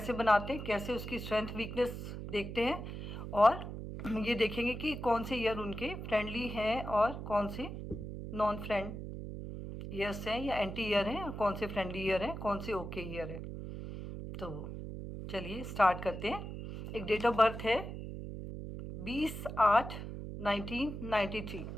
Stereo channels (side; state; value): right; noise; hum, 7 dB below the sound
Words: बनाते हैं, कैसे उसकी स्ट्रेंथ वीकनेस देखते हैं और ये देखेंगे कि कौन से ईयर उनके फ्रेंडली हैं और कौन से नॉन फ्रेंड ईयर्स हैं या एंटी ईयर हैं, और कौन से फ्रेंडली ईयर हैं, कौन से ओके ईयर है। तो चलिए स्टार्ट करते हैं। एक डेट ऑफ बर्थ है 20/8/1993।